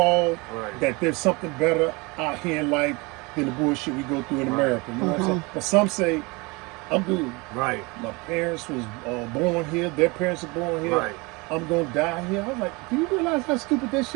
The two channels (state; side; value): quieter; left; 26.2 dB